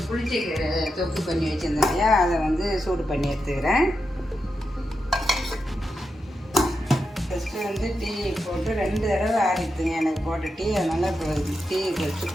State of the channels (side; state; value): both; normal; correlation 0.87